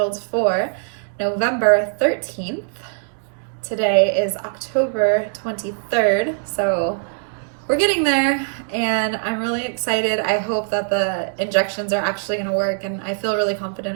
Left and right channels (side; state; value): left; silent; 65 dB below the other